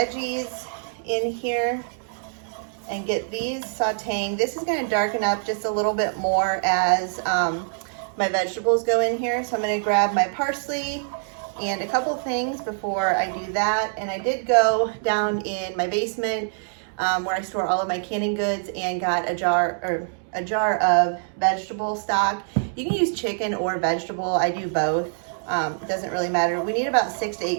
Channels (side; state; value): left; silent; digital silence